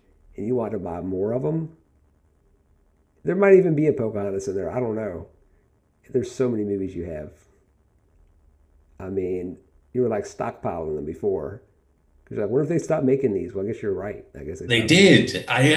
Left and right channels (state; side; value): identical; both; correlation 1.00